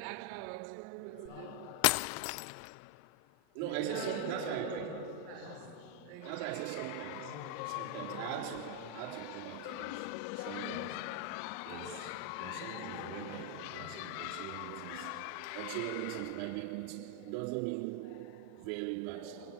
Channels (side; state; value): both; different; correlation 0.00